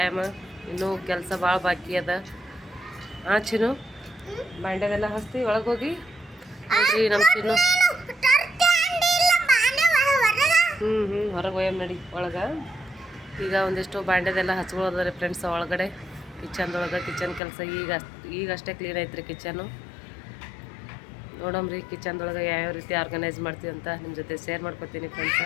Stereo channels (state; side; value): drops out; right; at 17.4 s